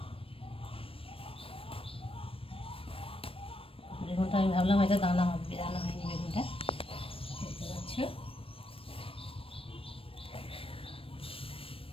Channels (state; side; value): late; right; 0.27 ms